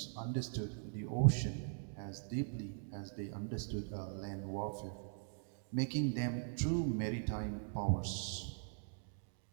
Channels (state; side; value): silent; left; digital silence